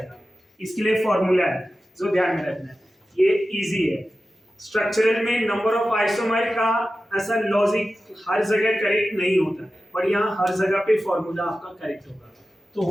इसके लिए फॉर्मूला है जो ध्यान में रखना है, ये इजी है। स्ट्रक्चरल में नंबर ऑफ आइसोमर का ऐसा लॉजिक हर जगह करेक्ट नहीं होता, पर यहाँ हर जगह पे फॉर्मूला आपका करेक्ट होगा। तो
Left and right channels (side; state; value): both; normal; correlation 0.94